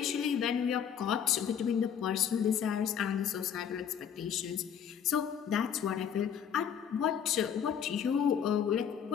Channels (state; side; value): quieter; right; 8.2 dB